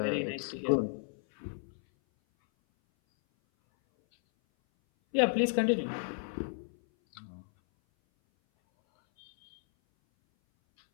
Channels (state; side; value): silent; right; 56 dB below the other